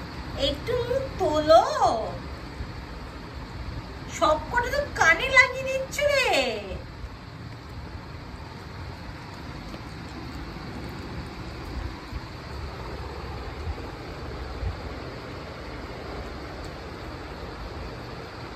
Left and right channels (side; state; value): both; identical; correlation 1.00